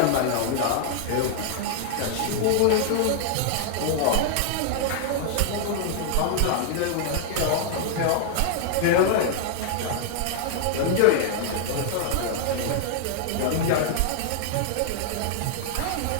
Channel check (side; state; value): both; different; correlation 0.00